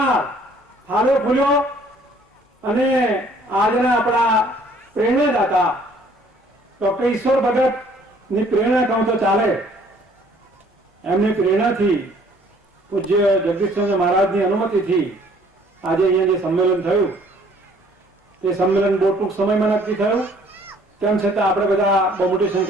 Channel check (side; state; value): both; normal; correlation 0.58